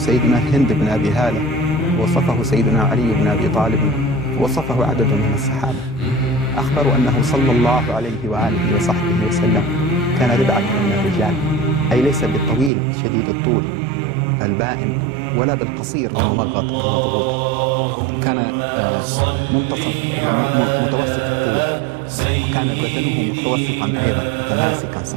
هند بن أبي هالة، وصفه سيدنا علي بن أبي طالب، وصفه عدد من الصحابة. أخبروا أنه صلى الله عليه وآله وصحبه وسلم كان ربعة من الرجال، أي ليس بالطويل شديد الطول البائن ولا بالقصير الممغط المضغوط، كان متوسط الطول، وكان بدنه متوسطا أيضا متماسكا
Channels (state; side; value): drops out; left; at 12.7 s